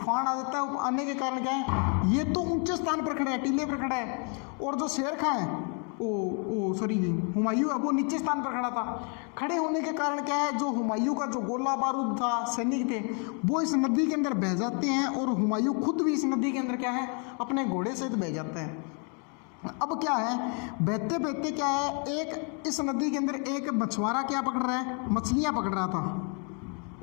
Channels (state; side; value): quieter; right; 38.2 dB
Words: आ जाता है। आने के कारण क्या है, ये तो ऊंचे स्थान पर खड़ा है, टीले पर खड़ा है, और जो शेर खां है हुमायूं है, वो नीचे स्थान पर खड़ा था। खड़े होने के कारण क्या है, जो हुमायूं का जो गोला बारूद था, सैनिक थे, वो इस नदी के अंदर बह जाते हैं। और हुमायूं खुद भी इस नदी के अंदर क्या है, अपने घोड़े सहित बह जाता है। अब क्या है, बहते बहते क्या है, एक इस नदी के अंदर एक मछुआरा क्या पकड़ रहा है, मछलियां पकड़ रहा था,